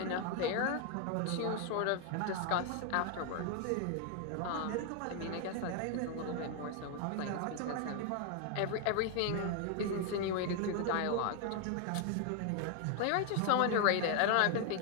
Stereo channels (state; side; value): different; both; correlation 0.00